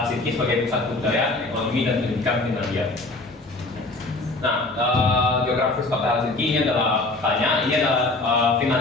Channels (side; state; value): right; quieter; 3.0 dB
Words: sebagai pusat budaya, ekonomi, dan pendidikan Finlandia. Nah, geografis kota Helsinki ini adalah ini adalah